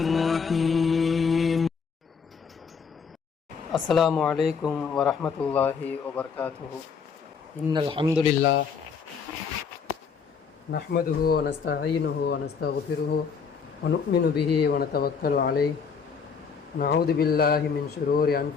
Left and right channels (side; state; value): right; quieter; 6.0 dB